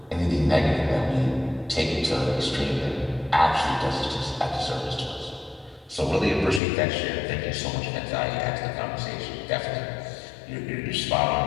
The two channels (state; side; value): drops out; right; at 6.6 s